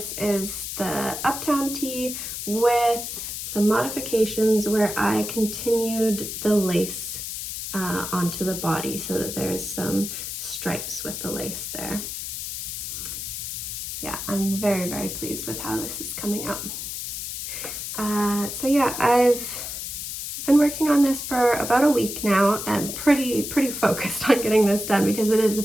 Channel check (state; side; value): noise; left; hiss, 6 dB below the sound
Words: is the Uptown Tee with some modifications where I continued the lace onto the body so that there's some stripes with the lace there. Yeah, I'm very, very pleased with how this is coming out. So yeah, I've been working on this for about a week now and pretty focused on getting this done because it is a